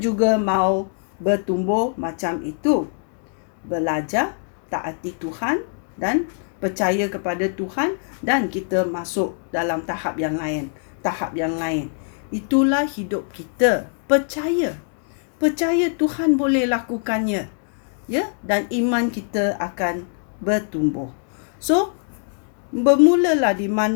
mau bertumbuh macam itu, belajar taati Tuhan dan percaya kepada Tuhan, dan kita masuk dalam tahap yang lain. Itulah hidup kita. Percaya Tuhan boleh lakukannya, ya, dan iman kita akan bertumbuh. So bermulalah di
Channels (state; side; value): silent; right; 62 dB below the other